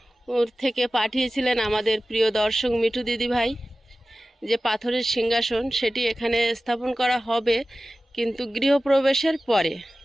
থেকে পাঠিয়েছিলেন আমাদের প্রিয় দর্শক মিঠু দিদিভাই, যে পাথরের সিংহাসন, সেটি এখানে স্থাপন করা হবে, কিন্তু গৃহপ্রবেশের পরে।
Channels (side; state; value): both; normal; correlation 0.96